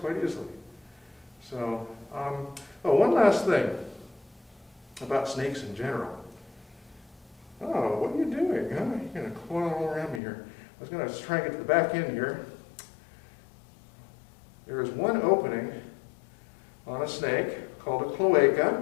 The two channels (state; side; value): drops out; right; at 10.2 s